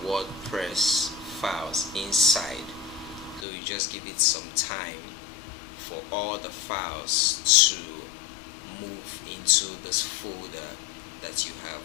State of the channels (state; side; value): drops out; right; at 3.5 s